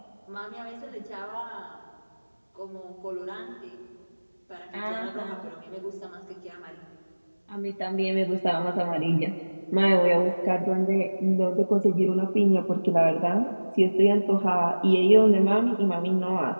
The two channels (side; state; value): both; inverted; correlation -1.00